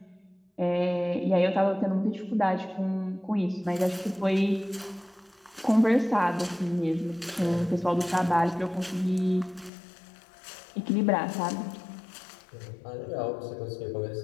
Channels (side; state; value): right; drops out; at 9.7 s